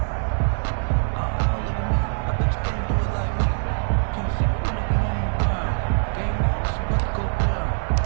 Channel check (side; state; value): left; silent; 63 dB below the other